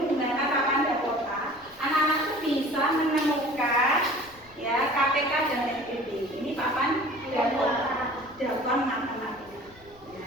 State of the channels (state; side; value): noise; left; rumble, 26 dB below the sound